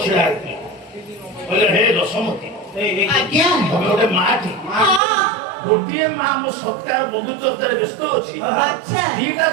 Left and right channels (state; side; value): drops out; left; at 5.0 s